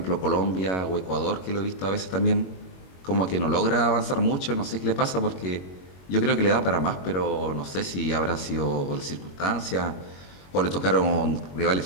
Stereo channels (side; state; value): right; late; 22 ms